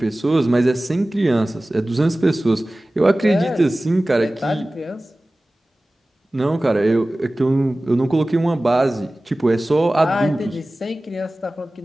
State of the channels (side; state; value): both; normal; correlation 0.97